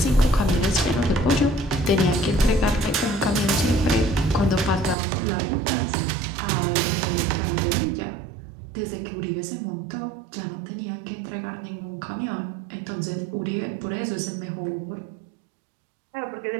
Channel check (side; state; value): left; drops out; at 5.0 s